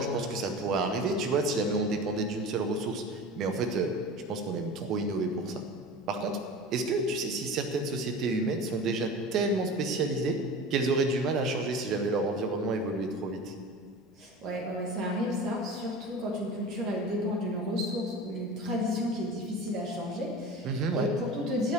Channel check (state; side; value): normal; both; correlation 0.34